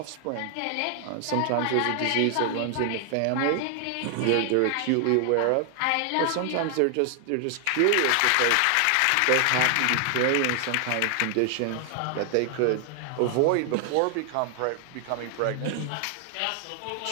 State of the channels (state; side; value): different; both; correlation 0.00